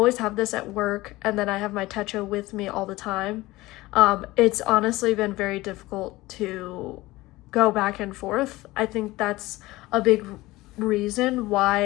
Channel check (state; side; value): quieter; right; 19.2 dB